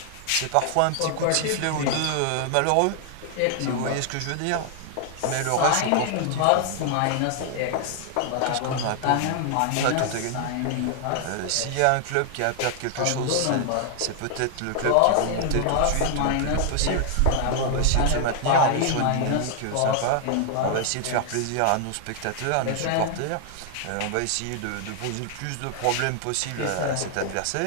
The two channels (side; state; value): both; different; correlation 0.00